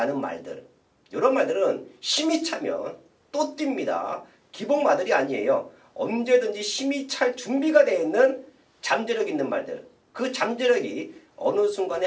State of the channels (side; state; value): both; identical; correlation 1.00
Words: 말들, 이런 말들은 힘이 차면 또 뜁니다. 기복마들이 아니에요. 언제든지 힘이 찰 준비가 되어 있는 잠재력 있는 말들, 그 잠재력이 어느